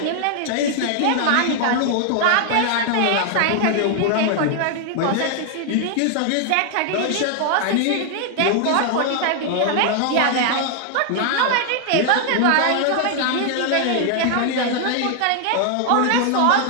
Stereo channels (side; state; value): both; different; correlation 0.00